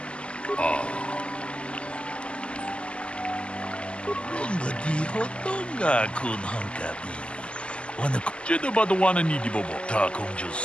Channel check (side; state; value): right; late; 0.054 ms